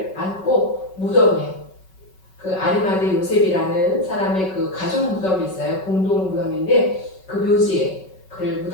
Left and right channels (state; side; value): late; right; 5.3 ms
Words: 안고 무덤에, 그 아리마대 요셉이라는 사람의 그 가족 무덤이 있어요. 공동 무덤인데 그 묘지에 그를